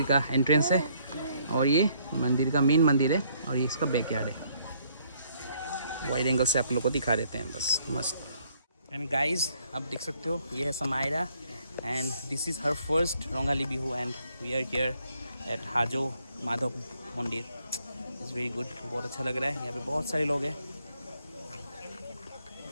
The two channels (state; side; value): inverted; both; correlation -0.68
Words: का एंट्रेंस है और ये मंदिर का मेन मंदिर है और ये इसका बैकयार्ड है। वाइड एंगल से आप लोग को दिखा देते हैं, बस मस्त। एंड गाइज आप देख सकते हो ये है Samaira and this is her first Rongali Bihu and we are here at Hajo Madhav Mandir. Is very good, बहुत अच्छा लग रहा है। यहाँ पे बहुत सारे लोग हैं।